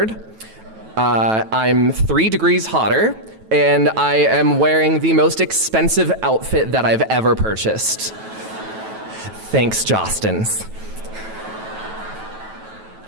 I'm 3 degrees hotter, and I am wearing the most expensive outfit that I've ever purchased. Thanks, Jostens.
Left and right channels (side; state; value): left; late; 9.2 ms